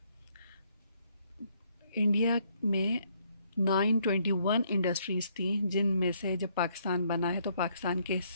इंडिया में 921 इंडस्ट्रीज़ थी, जिनमें से जब पाकिस्तान बना है तो पाकिस्तान के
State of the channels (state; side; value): inverted; both; correlation -0.70